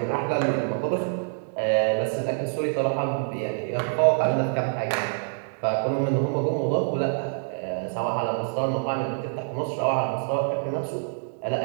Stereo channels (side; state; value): left; silent; digital silence